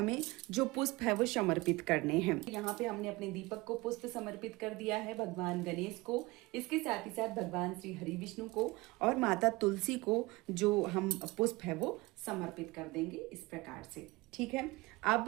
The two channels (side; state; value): left; quieter; 22.1 dB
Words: जो पुष्प है वो समर्पित करने हैं। यहाँ पे हमने अपने दीपक को पुष्प समर्पित कर दिया है, भगवान गणेश को, इसके साथ ही साथ भगवान श्री हरि विष्णु को और माता तुलसी को जो हम पुष्प है वो समर्पित कर देंगे इस प्रकार से। ठीक है।